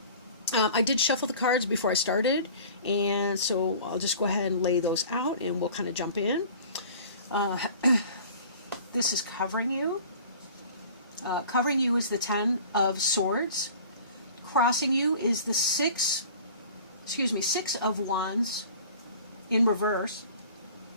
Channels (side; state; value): both; inverted; correlation -0.45